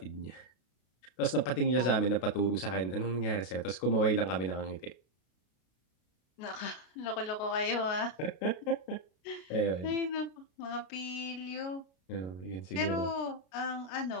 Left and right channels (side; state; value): right; late; 32 ms